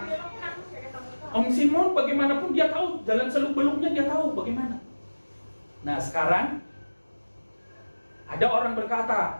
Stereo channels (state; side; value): inverted; both; correlation -1.00